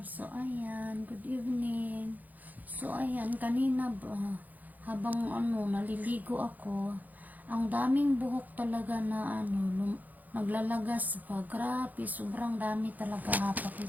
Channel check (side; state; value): left; late; 0.082 ms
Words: So, ayan, good evening. So, ayan, kanina ba, habang naliligo ako, ang daming buhok talaga na naglalagas pa. Grabe, sobrang dami talaga.